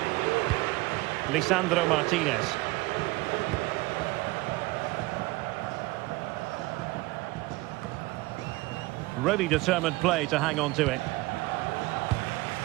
Lisandro Martinez. Really determined play to hang on to it.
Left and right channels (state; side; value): quieter; left; 21.6 dB